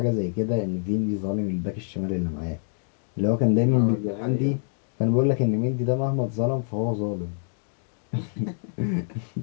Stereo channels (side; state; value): right; silent; digital silence